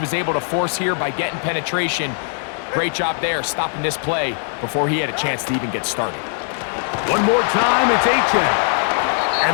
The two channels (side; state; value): right; silent; 65 dB below the other